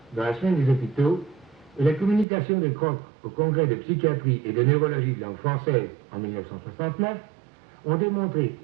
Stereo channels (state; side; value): drops out; left; at 2.2 s